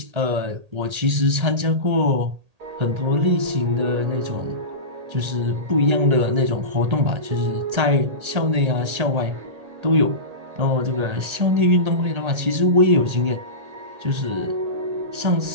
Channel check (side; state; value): left; late; 1.8 ms